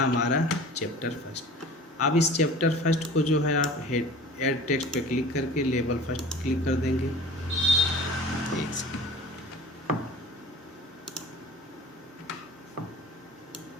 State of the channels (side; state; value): both; normal; correlation 0.42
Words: चैप्टर फर्स्ट। अब इस चैप्टर फर्स्ट को जो है आप हेड ऐड टेक्स्ट पे क्लिक करके लेबल फर्स्ट क्लिक कर देंगे। एक सेकंड।